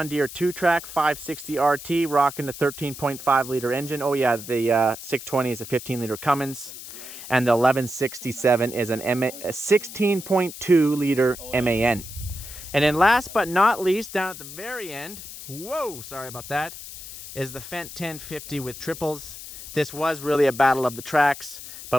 Deere 2-track 560 RT, rocking the 13.5 liter engine. Oh yeah, the 620 is a 15 liter Cummins, and the 1167 is a 16.2 liter MAN. And then last but not least, down at the very end, whoa, sorry about that, is the Fendt 1050 with triples. This was really a battle of the tracks,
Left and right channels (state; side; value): noise; left; hiss, 12 dB below the sound